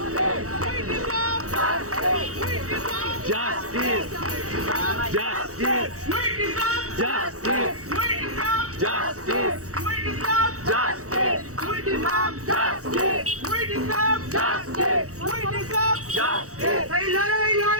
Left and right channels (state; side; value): late; left; 0.65 ms